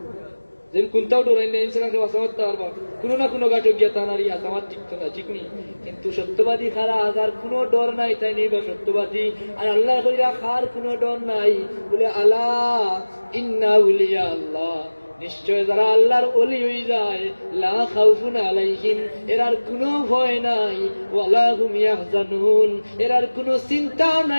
যে কোনটাও ডরাই না ইনসানকে বাঁচা করতে পারবা কোনো না কোনো গাটো গিয়া তানারি আমার ঠিক তো না ঠিক নেই কিন্তু সত্যবাদী খারা আজার কোনো ডর নাই তাই নেই বা সত্যবাদী আর আল্লাহ কইরা খার কোনো ডর নাই বলে আলা ইন্না উলিয়া আল্লাহ নিশ্চয় যারা আল্লাহর ওলি হয়ে যায় লা খাউফুন আলাইহিম এরার কোনো ভয় নাই ওয়ালা হুম ইয়াহজানুন এরার কোনো চিন্তা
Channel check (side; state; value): both; inverted; correlation -1.00